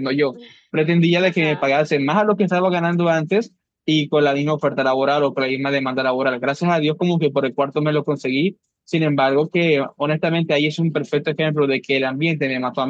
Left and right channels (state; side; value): identical; both; correlation 1.00